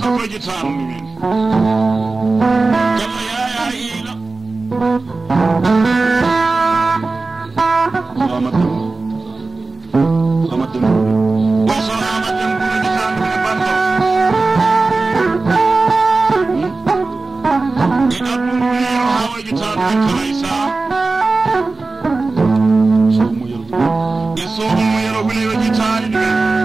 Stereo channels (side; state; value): left; quieter; 3.6 dB